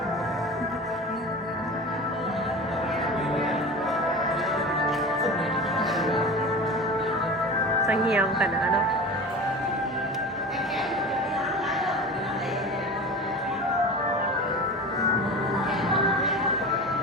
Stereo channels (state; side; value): normal; both; correlation 0.32